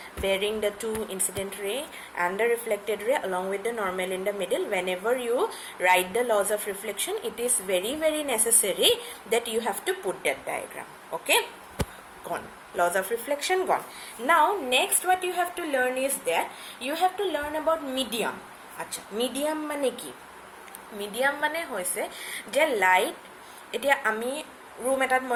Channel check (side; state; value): both; identical; correlation 1.00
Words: bearing the two incident ray and the reflected ray along with the normal in the middle. Whenever you write the laws of reflection, it is very, very necessary that you have to put that diagram. Okay, gone. Laws of reflection gone. Now next what you have to learn is that you have to learn about medium. Acha, medium mane ki? Medium mane hoise je light etia ami room etat